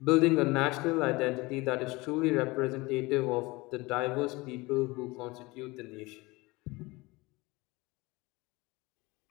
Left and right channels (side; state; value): right; quieter; 22.8 dB